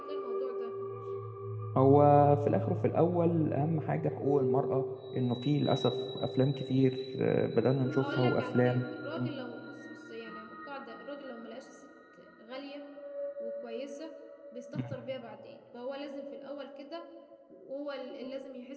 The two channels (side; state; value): both; identical; correlation 1.00